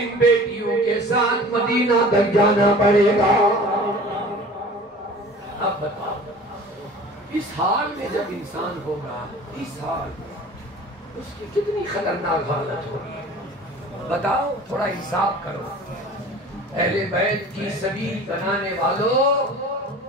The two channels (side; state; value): both; normal; correlation 0.43